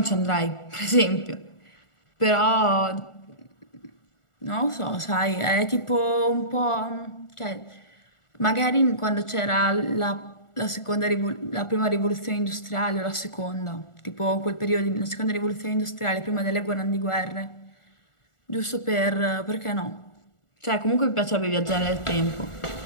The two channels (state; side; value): late; right; 1.4 ms